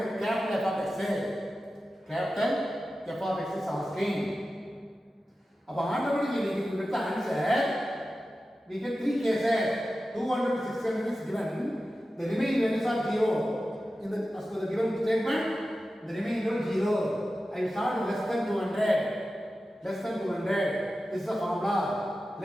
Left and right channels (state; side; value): normal; both; correlation 0.93